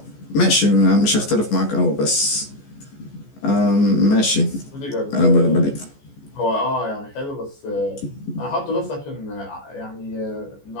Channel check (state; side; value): late; right; 14 ms